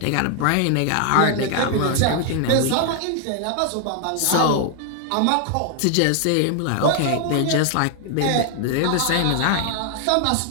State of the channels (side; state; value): both; different; correlation 0.00